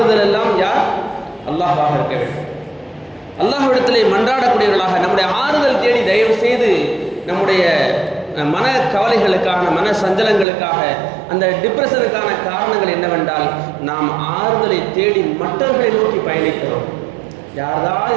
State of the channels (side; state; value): left; drops out; at 10.5 s